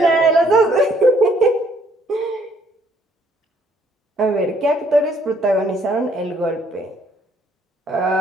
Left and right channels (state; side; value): normal; both; correlation 0.65